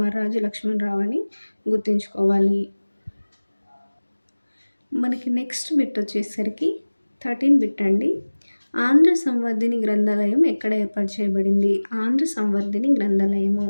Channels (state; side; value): inverted; both; correlation -1.00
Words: లక్ష్మణరావు అని గుర్తుంచుకోవాలి. మనకి నెక్స్ట్ బిట్ వచ్చేసరికి 13 బిట్ అండి. ఆంధ్ర సంవర్ధిని గ్రంథాలయం ఎక్కడ ఏర్పాటు చేయబడింది? ఆంధ్ర సంవర్ధిని గ్రంథాలయము